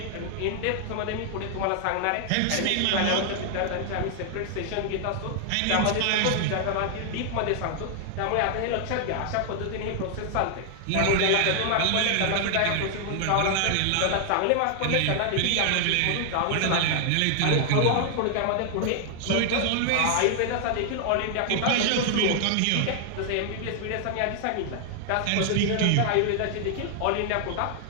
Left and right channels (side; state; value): both; different; correlation 0.00